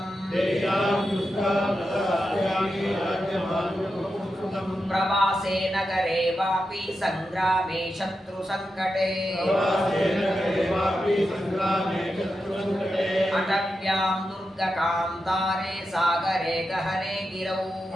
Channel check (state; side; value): normal; both; correlation 0.88